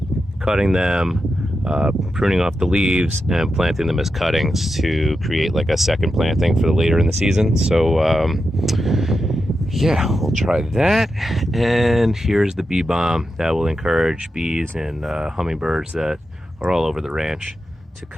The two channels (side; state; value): both; normal; correlation 0.88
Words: cutting them, pruning off the leaves and planting them as cuttings to create like a second planting for the later in the season. So yeah, we'll try that. And here's the bee balm that will encourage bees and hummingbirds that are all over the ranch to